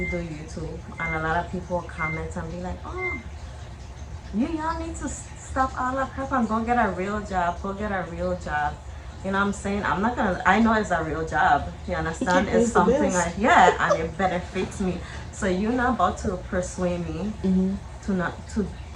do YouTube, and a lot of people comment and be like, "Oh, y'all need to stop all that crap and go get a real job. Go get a real job." You know what I'm saying? I'm not gonna. I know it's a real job. You understand? It It's pays the something bills. I yeah, and it benefits me. So you're not about to persuade me Mm-hmm. to not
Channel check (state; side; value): identical; both; correlation 1.00